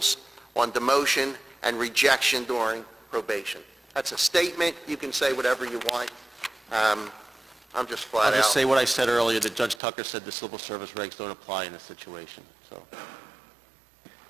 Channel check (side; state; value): left; drops out; at 9.8 s